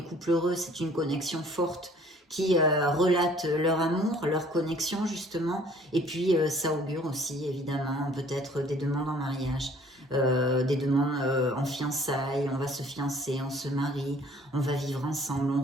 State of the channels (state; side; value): normal; both; correlation 0.55